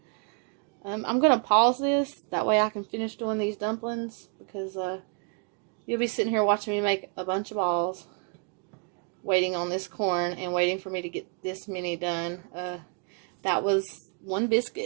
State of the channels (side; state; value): left; quieter; 38.4 dB